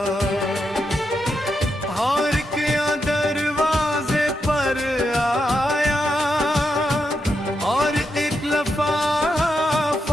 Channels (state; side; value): normal; both; correlation 0.84